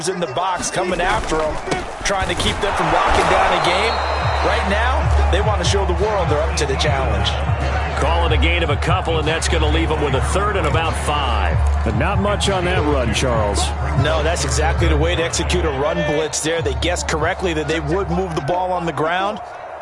in the box coming after them, trying to keep them from locking down a game. Right now, they want to show the world they're up to the challenge. Call it a gain of a couple, and that's going to leave them with a 3rd and about 5. But not much on that run, Charles. No, that's exactly the way to execute a run blitz there. They guessed correctly that they would move the ball on the ground,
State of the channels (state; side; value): identical; both; correlation 1.00